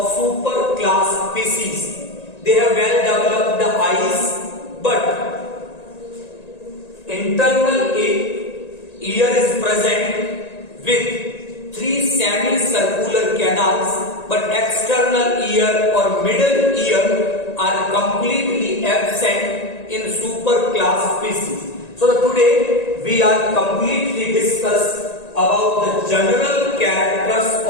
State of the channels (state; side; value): late; right; 1.9 ms